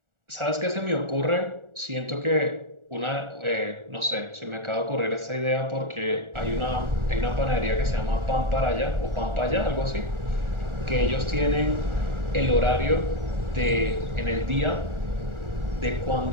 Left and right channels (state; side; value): late; left; 1.4 ms